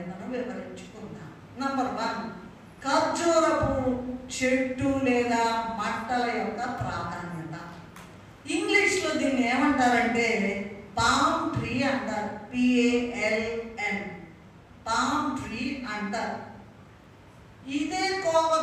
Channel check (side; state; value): both; identical; correlation 1.00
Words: వివరించుకుందాం. నంబర్ 1 ఖర్జూరపు చెట్టు లేదా మంటల యొక్క ప్రాధాన్యత. ఇంగ్లీష్లో దీన్ని ఏమంటారంటే పామ్ ట్రీ అంటారు. PALM పామ్ ట్రీ అంటారు. ఇదే